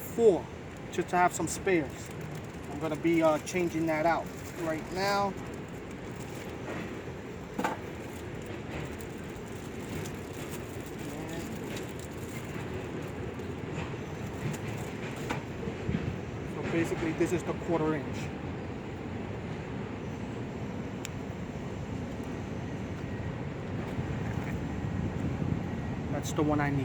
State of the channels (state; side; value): identical; both; correlation 1.00